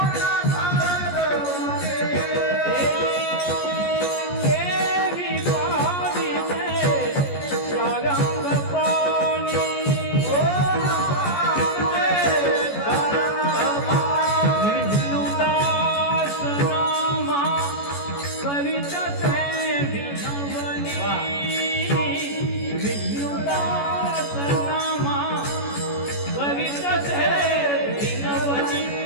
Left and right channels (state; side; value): late; right; 14 ms